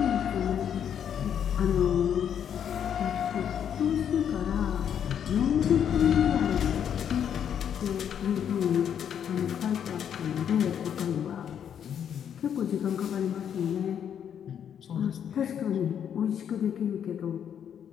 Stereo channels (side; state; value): right; quieter; 8.8 dB